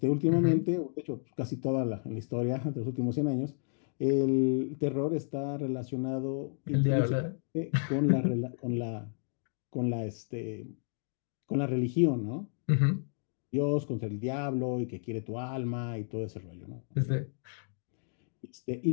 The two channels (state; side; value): silent; right; digital silence